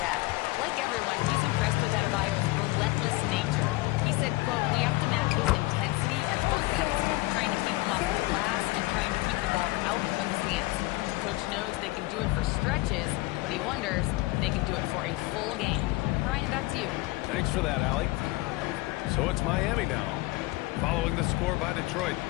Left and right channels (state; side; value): quieter; right; 21.0 dB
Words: Like everyone, he's impressed with Adebayo's relentless nature. He said, quote, "We have to match his intensity at both ends, trying to keep him off the glass and trying to keep the ball out of his hands. Coach knows they can do it for stretches, but he wonders if they can do it for a full game." Brian, back to you. Thanks for that, Allie. So it's Miami now, following the score by Detroit.